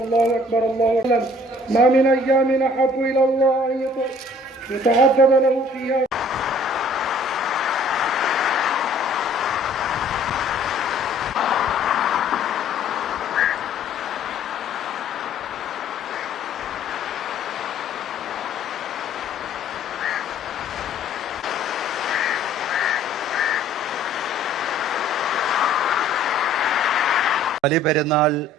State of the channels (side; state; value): both; normal; correlation 0.56